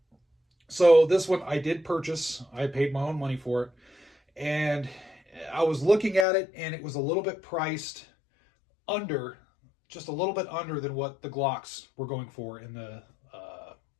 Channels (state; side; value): drops out; right; at 6.2 s